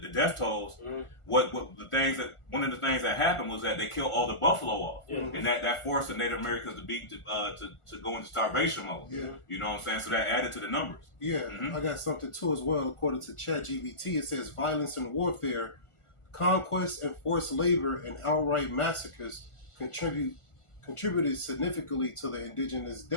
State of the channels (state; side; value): late; right; 1.4 ms